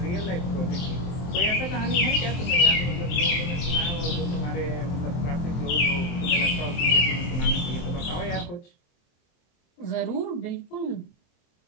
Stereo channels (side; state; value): right; late; 23 ms